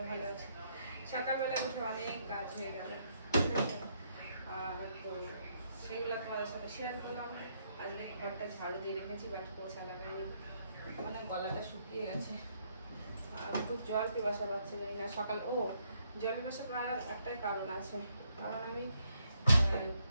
ভালো আছি। সকালবেলা উঠে অনেক কাজ হয়ে গেল, তো সেগুলো তোমাদের সাথে শেয়ার করলাম। আজকে ঘরটা ঝাড়ু দিয়ে রেখেছি, বাট পোছা লাগাইনি, মানে গলাটা শুকিয়ে গেছে আর খুব জল পিপাসা পাচ্ছে না সকাল। জল পিপাসা পাওয়ার একটাই কারণ আছে, কারণ আমি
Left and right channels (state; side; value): inverted; both; correlation -0.74